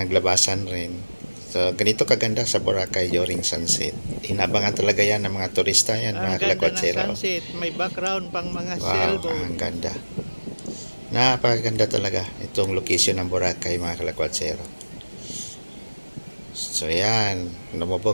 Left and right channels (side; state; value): both; inverted; correlation -1.00